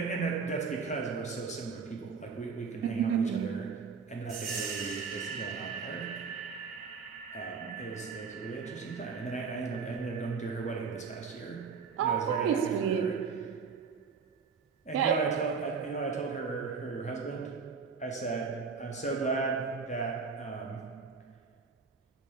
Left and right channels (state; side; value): quieter; left; 5.5 dB